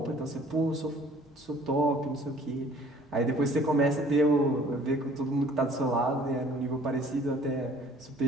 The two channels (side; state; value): both; normal; correlation 0.55